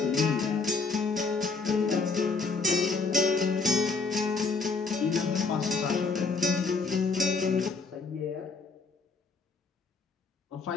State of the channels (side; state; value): right; quieter; 4.4 dB